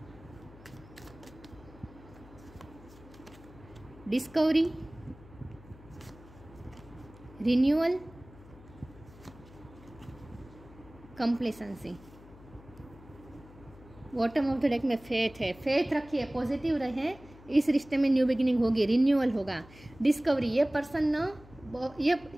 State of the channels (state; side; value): noise; left; hum, 21 dB below the sound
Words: Discovery, renewal, complacency. Bottom of the deck में फेथ है, फेथ रखिए, पॉजिटिव रहे, इस रिश्ते में न्यू बिगिनिंग होगी, रिन्यूअल होगा। डिस्कवरी, ये पर्सन ना